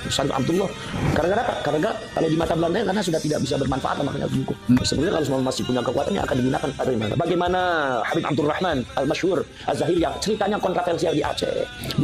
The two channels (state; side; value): identical; both; correlation 1.00